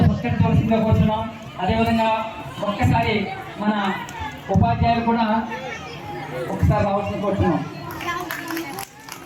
సత్కరించవలసిందిగా కోరుతున్నాం. అదేవిధంగా ఒక్కసారి మన ఉపాధ్యాయులు కూడా ఒకసారి రావాల్సింది కోరుతున్నాం.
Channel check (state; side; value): identical; both; correlation 1.00